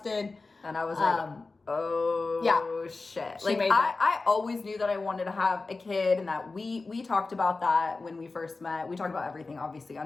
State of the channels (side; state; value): right; quieter; 3.7 dB